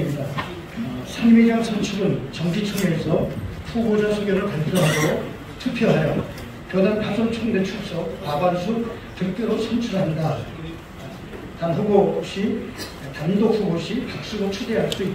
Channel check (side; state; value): both; identical; correlation 1.00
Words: 상임회장 선출은 정기총회에서 후보자 소견을 발표하고 투표하여 교단 파손 총대 출석 과반수 득표로 선출합니다. 단독 후보 시 박수로 추대할 수